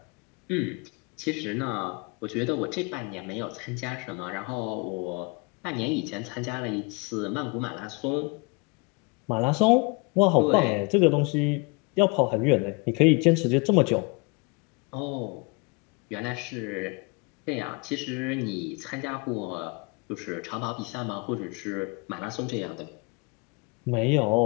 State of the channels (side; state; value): right; quieter; 29.9 dB